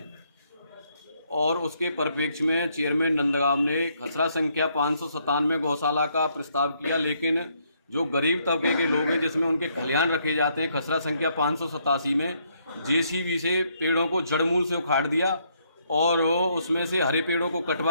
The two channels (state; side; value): inverted; both; correlation -0.72